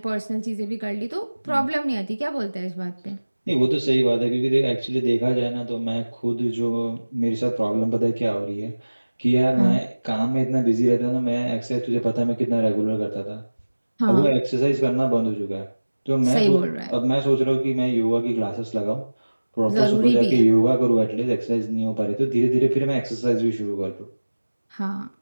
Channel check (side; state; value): both; inverted; correlation -1.00